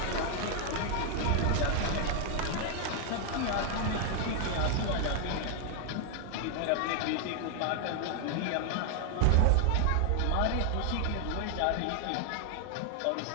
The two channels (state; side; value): different; both; correlation 0.00